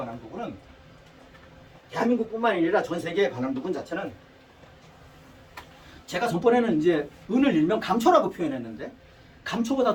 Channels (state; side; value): identical; both; correlation 1.00